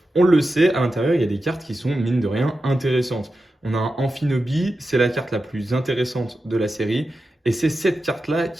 on le sait, à l'intérieur, il y a des cartes qui sont, mine de rien, intéressantes. On a un Amphinobi, c'est la carte la plus intéressante de la série. Et c'est cette carte-là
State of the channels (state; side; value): normal; both; correlation 0.91